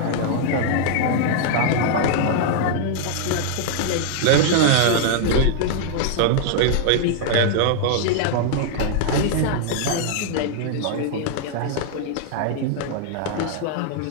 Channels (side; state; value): both; different; correlation -0.01